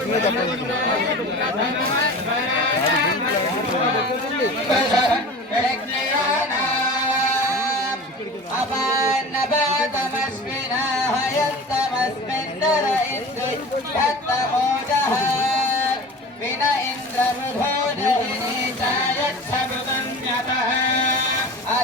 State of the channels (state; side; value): normal; both; correlation 0.36